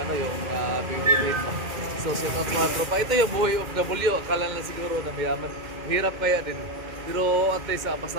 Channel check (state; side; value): late; left; 2.1 ms